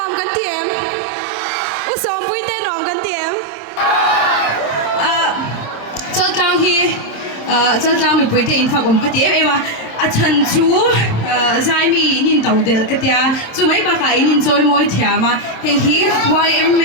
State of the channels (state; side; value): late; right; 27 ms